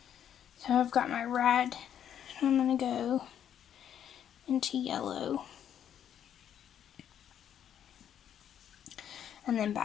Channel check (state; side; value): quieter; right; 9.6 dB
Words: So I've got my red, and I'm going to go into yellow. and then